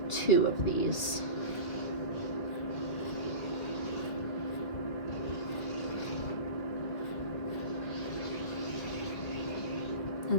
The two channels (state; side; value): late; right; 2.6 ms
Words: 2 of these.